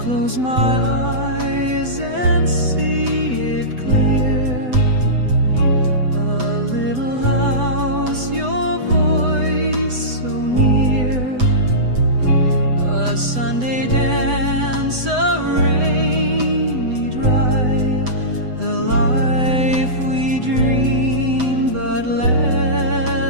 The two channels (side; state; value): left; late; 8.0 ms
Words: my eyes and see it clear. A little house, your voice so near. A Sunday dance, a rainy drive. The life we dreamed but